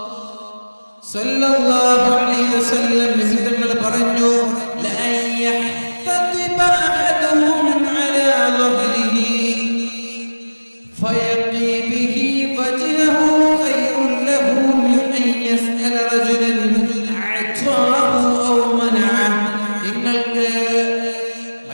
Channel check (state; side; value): inverted; both; correlation -1.00